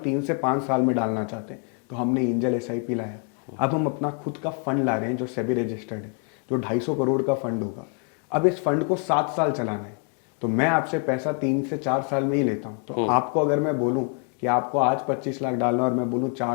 से 5 साल में डालना चाहते हैं, तो हमने एंजल SIP लाया। अब हम अपना खुद का फंड ला रहे हैं जो सेबी रजिस्टर्ड है, जो 250 करोड़ का फंड होगा। अब इस फंड को 7 साल चलाना है, तो मैं आपसे पैसा 3 से 4 साल में ही लेता हूँ। तो आपको अगर मैं बोलूँ कि आपको आज 25 लाख डालना और मैं बोलूँ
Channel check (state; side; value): quieter; right; 38.8 dB